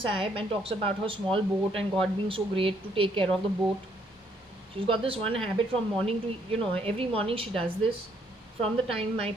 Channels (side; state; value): both; normal; correlation 0.69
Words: Sahib and talks about her small boat and God being so great to take care of the boat. She's got this one habit from morning to, every morning she does this from the time